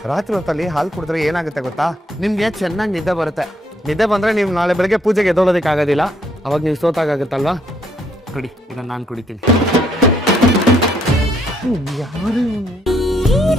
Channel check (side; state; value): both; normal; correlation 0.71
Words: ರಾತ್ರಿ ಹೊತ್ತಲ್ಲಿ ಹಾಲು ಕುಡಿದ್ರೆ ಏನಾಗುತ್ತೆ ಗೊತ್ತಾ? ನಿಮ್ಗೆ ಚೆನ್ನಾಗಿ ನಿದ್ದೆ ಬರುತ್ತೆ. ನಿದ್ದೆ ಬಂದ್ರೆ ನೀವು ನಾಳೆ ಬೆಳಗ್ಗೆ ಪೂಜೆಗೆ ಎದ್ದೋಳೋದಕ್ಕೆ ಆಗೋದಿಲ್ಲ. ಅವಾಗ ನೀವು ಸೋತಾಗುತ್ತಲ್ವಾ? ಕುಡಿ, ಇದನ್ನ ನಾನು ಕುಡಿತೀನಿ. ಯಾರು